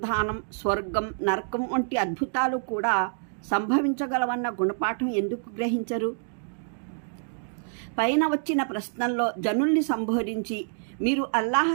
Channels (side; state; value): left; silent; digital silence